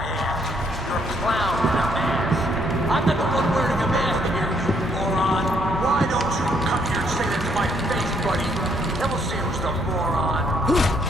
ass. You're a clown in a mask. I'm not the one wearing a mask here, you moron. Why don't you come here and say that to my face, buddy? Then we'll see who's the moron.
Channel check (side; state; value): both; normal; correlation 0.69